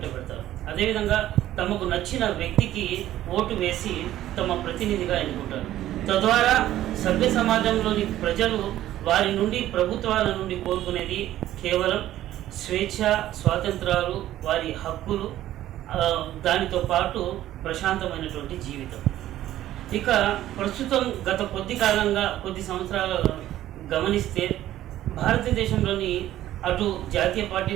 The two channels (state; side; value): quieter; left; 13.4 dB